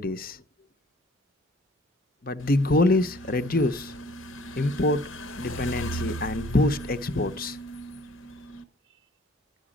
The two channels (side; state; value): both; normal; correlation 0.55